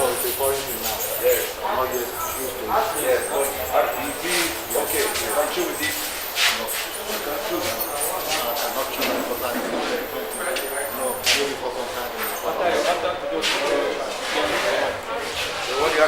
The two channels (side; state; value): both; identical; correlation 1.00